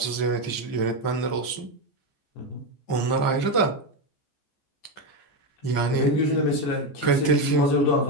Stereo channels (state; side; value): late; right; 14 ms